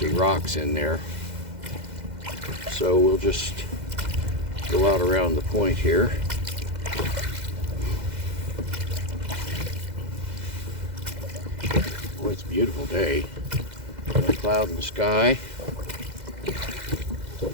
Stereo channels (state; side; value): late; left; 2.0 ms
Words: rocks in there. So we'll just go out around the point here. Boy, it's a beautiful day. No cloud in the sky.